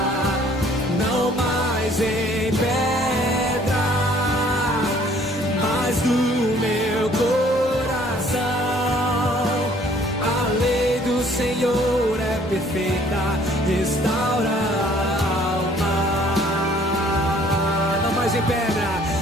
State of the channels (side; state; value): both; normal; correlation 0.58